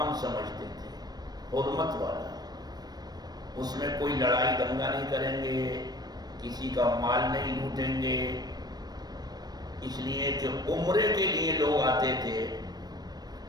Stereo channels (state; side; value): late; left; 0.19 ms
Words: سمجھتے تھے، حرمت والا۔ اس میں کوئی لڑائی دنگا نہیں کریں گے، کسی کا مال نہیں لوٹیں گے، اس لیے کہ عمرے کے لیے لوگ آتے تھے